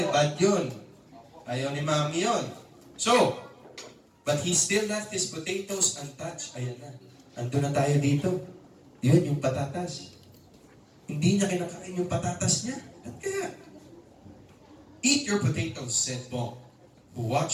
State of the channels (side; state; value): both; identical; correlation 1.00